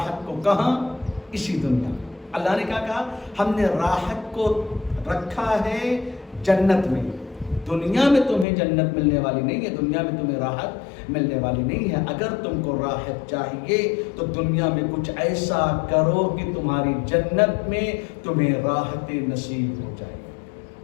کو، کہاں؟ اسی دنیا۔ اللہ نے کیا کہا؟ ہم نے راحت کو رکھا ہے جنت میں۔ دنیا میں تمہیں جنت ملنے والی نہیں ہے، دنیا میں تمہیں راحت ملنے والی نہیں ہے۔ اگر تم کو راحت چاہیے تو دنیا میں کچھ ایسا کرو کہ تمہاری جنت میں تمہیں راحت نصیب ہو جائے۔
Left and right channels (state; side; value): drops out; right; at 8.5 s